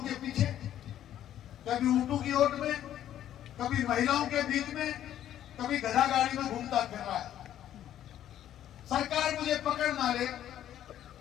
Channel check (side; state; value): right; quieter; 11.4 dB